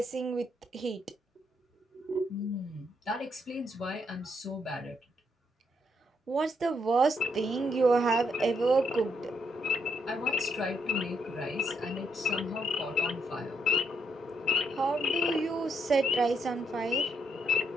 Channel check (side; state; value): both; normal; correlation 0.76